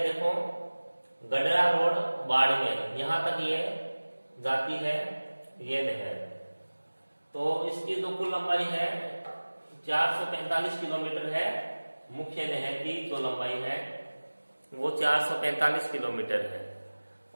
गडरा रोड बाड़मेर, यहाँ तक ये जाती है ये नहर। तो इसकी जो कुल लंबाई है 445 किलोमीटर है। मुख्य नहर की जो लंबाई है वो 445 किलोमीटर है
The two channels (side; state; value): both; inverted; correlation -1.00